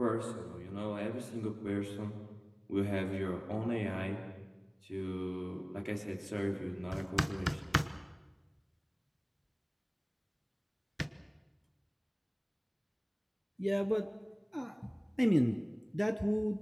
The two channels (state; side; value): identical; both; correlation 1.00